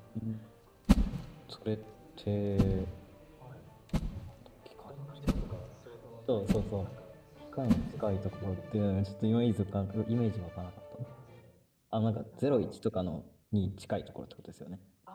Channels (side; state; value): both; identical; correlation 1.00